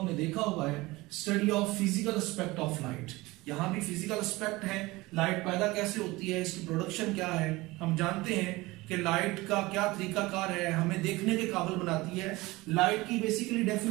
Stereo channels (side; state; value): left; quieter; 21.0 dB